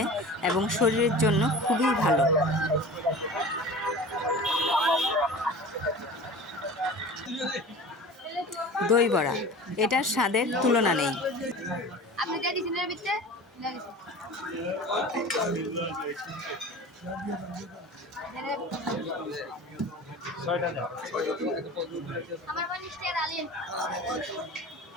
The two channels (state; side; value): normal; both; correlation 0.37